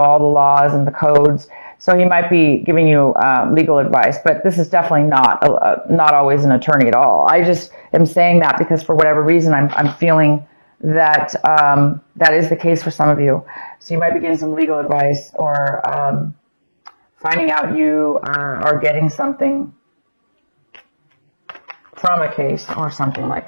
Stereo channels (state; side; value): inverted; both; correlation -1.00